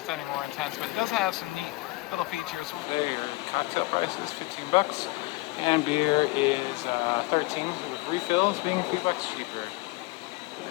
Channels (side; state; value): right; quieter; 23.0 dB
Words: any more intense, but it does have some neat little features. Cocktail price is 15 bucks, and beer is 13 with refills, being $2 cheaper.